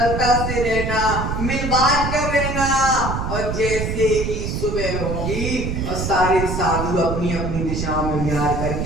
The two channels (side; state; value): right; noise; rumble, 3 dB below the sound